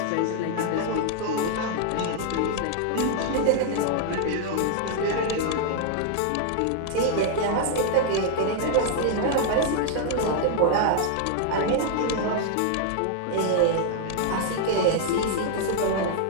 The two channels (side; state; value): both; different; correlation -0.01